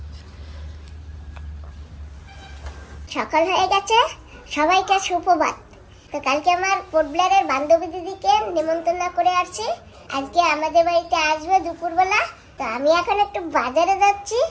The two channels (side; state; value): both; identical; correlation 1.00